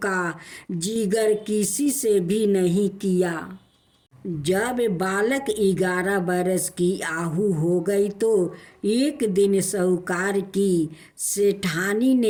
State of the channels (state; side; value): identical; both; correlation 1.00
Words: का जिक्र किसी से भी नहीं किया। जब बालक 11 बरस की आयु हो गई तो एक दिन साहूकार की सेठानी